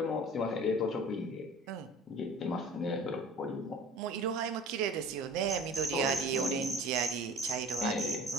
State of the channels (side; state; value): both; normal; correlation 0.43